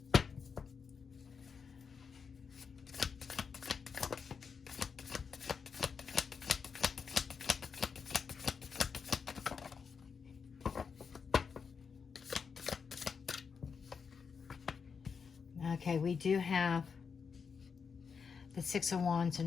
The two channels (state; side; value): quieter; right; 5.9 dB